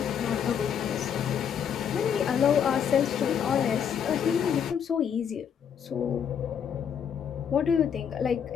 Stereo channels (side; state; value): right; quieter; 8.0 dB